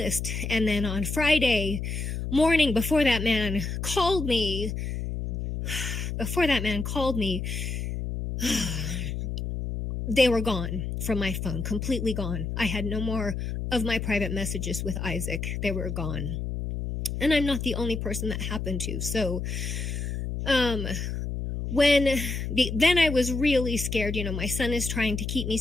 And then on Friday morning, before that man called me, they were gone from my phone, completely gone. I had no more of my private messages with Isaac. They were gone. And I'm not the only person that happened to. So, then I was really scared. You know, my son is trying to keep me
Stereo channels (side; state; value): left; noise; hum, 4 dB below the sound